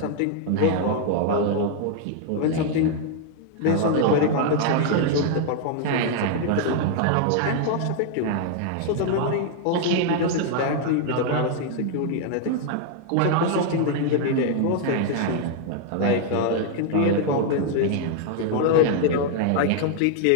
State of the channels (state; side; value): different; both; correlation 0.00